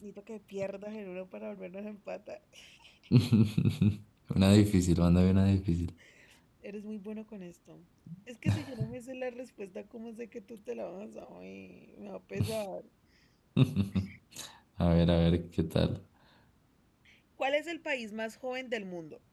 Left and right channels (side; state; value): both; identical; correlation 1.00